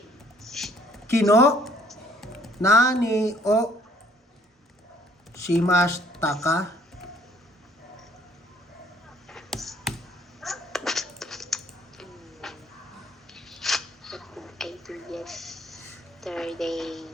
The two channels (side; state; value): both; normal; correlation 0.61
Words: Kino. Nani o. Shimashita ka. I do yesterday.